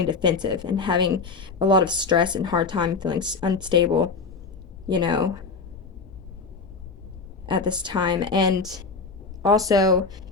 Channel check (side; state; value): right; quieter; 4.5 dB